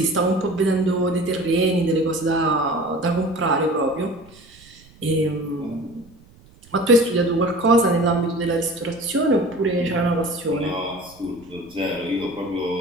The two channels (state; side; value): noise; right; rumble, 26 dB below the sound